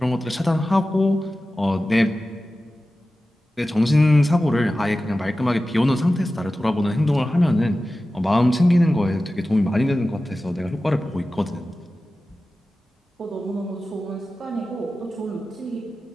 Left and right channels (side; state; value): both; normal; correlation 0.95